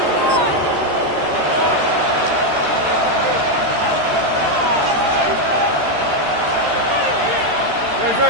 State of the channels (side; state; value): left; late; 13 ms